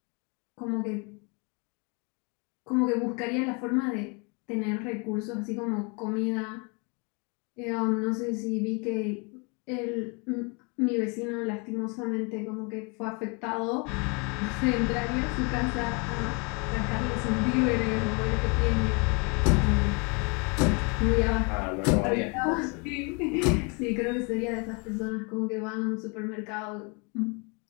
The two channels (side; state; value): right; quieter; 32.3 dB